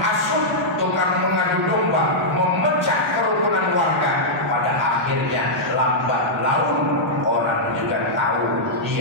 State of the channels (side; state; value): both; normal; correlation -0.09